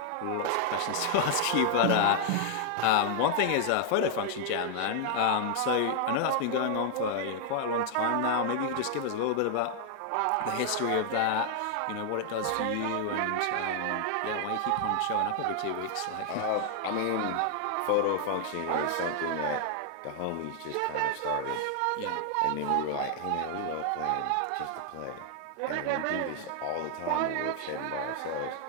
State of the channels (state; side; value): different; both; correlation 0.00